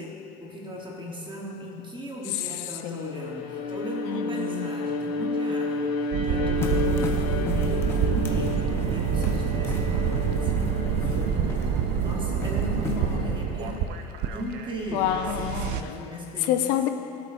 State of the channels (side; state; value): both; normal; correlation 0.26